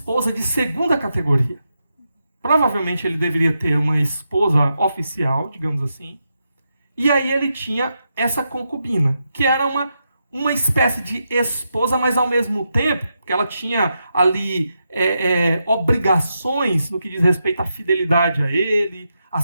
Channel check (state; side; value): inverted; both; correlation -0.85